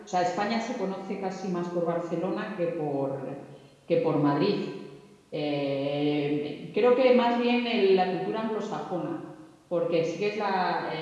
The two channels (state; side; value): identical; both; correlation 1.00